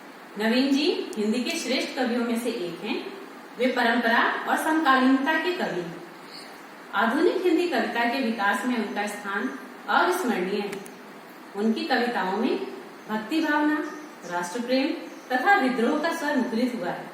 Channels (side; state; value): both; identical; correlation 1.00